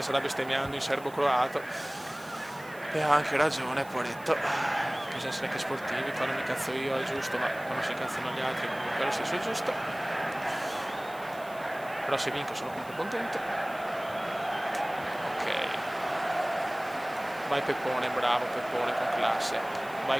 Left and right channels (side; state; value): right; noise; hiss, 21 dB below the sound